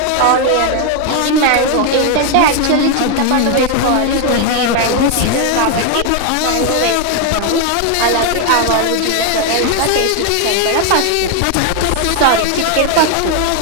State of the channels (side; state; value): both; different; correlation 0.01